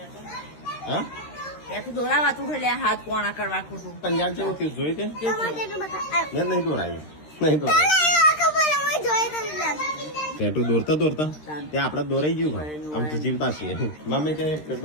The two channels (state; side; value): late; right; 13 ms